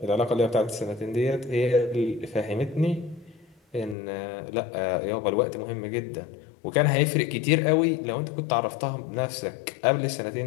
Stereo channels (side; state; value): right; drops out; at 4.0 s